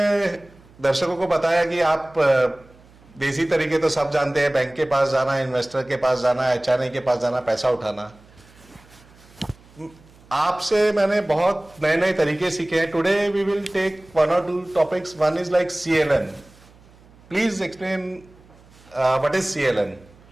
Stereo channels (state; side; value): noise; right; hum, 26 dB below the sound